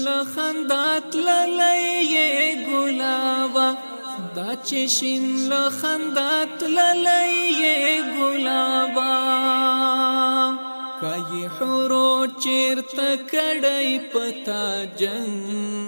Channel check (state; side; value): inverted; both; correlation -1.00